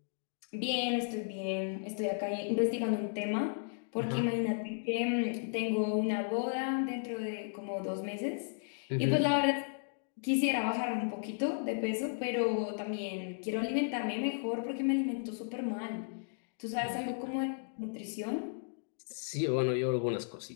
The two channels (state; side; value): silent; right; digital silence